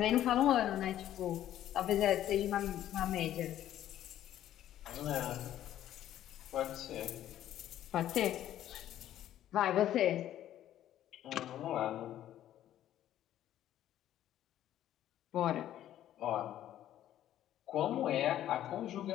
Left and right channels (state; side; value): quieter; right; 12.1 dB